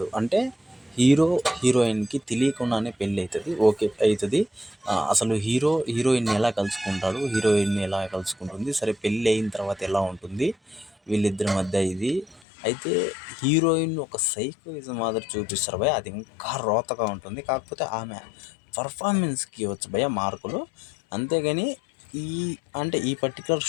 అంటే హీరోయిన్కి తెలియకుండానే పెళ్ళి అవుతుంది, ఓకే అవుతుంది. అసలు హీరోయిన్ని ఎలా కలుసుకుంటాడు, హీరోయిన్ని ఎలా కలుసుకుంటుంది, సరే పెళ్ళి అయిన తర్వాత ఎలా ఉంటుంది వీళ్ళిద్దరి మధ్య ఇది. అయితే హీరోయిన్ ఒక సైకోయిజం మాదిరి చూపిస్తారు భయ, అది ఇంకా రోతగా ఉంటుంది. కాకపోతే ఆమె పర్ఫార్మెన్స్కి ఇవ్వచ్చు భయ మార్కులు, అంతేగాని ఈ పర్టికులర్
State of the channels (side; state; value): right; drops out; at 12.4 s